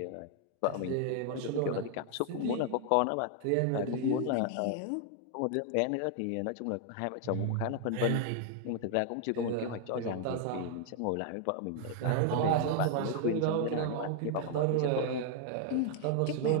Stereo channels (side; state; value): both; different; correlation 0.00